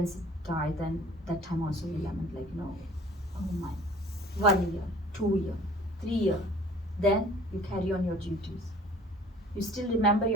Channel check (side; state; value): both; normal; correlation 0.50